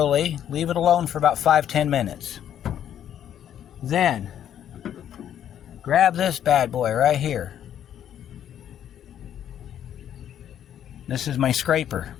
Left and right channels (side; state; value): right; quieter; 10.2 dB